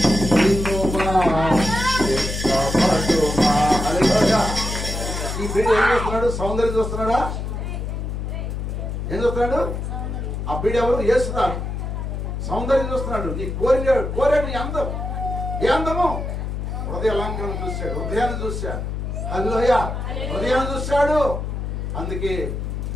చూస్తున్నాడా? ఏం చూస్తున్నాడు? ఆ బీడు ఎవరు? యేసుదాడు. సౌందర్యం చూస్తున్నాడు. నీ కోరాడు నీ అందం. ఏ అందము? హృదయ అలంకరణ చూశాడు, హృదయాన్ని చూశాడు. హల్లెలూయ, హృదయాన్ని చూశాడు. అందుకే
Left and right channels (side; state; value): left; noise; hum, 4 dB below the sound